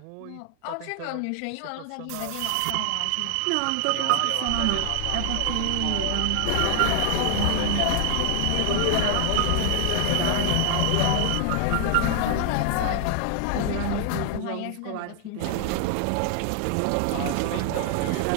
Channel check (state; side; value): different; both; correlation 0.00